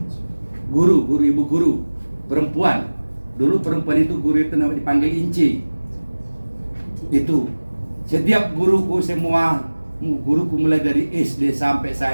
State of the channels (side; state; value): both; inverted; correlation -1.00